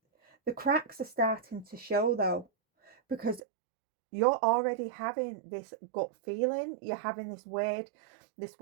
The cracks are starting to show though, because you're already having this gut feeling. You're having this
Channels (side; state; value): left; drops out; at 3.4 s